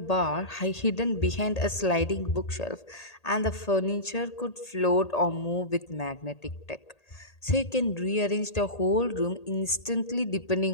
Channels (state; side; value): late; right; 1.8 ms